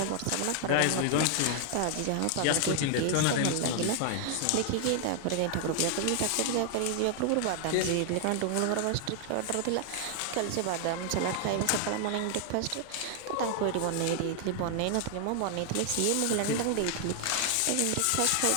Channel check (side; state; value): both; different; correlation 0.00